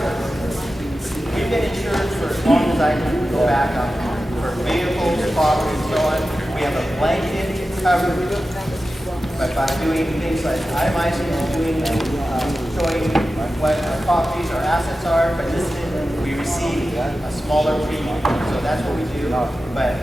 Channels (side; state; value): both; normal; correlation 0.93